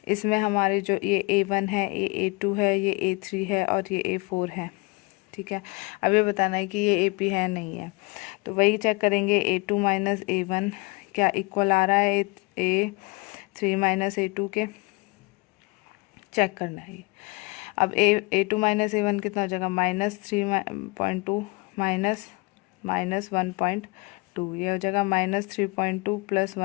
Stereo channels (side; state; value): right; quieter; 26.7 dB